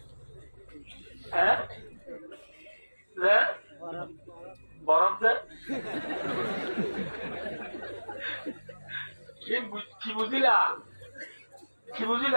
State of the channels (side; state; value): both; inverted; correlation -1.00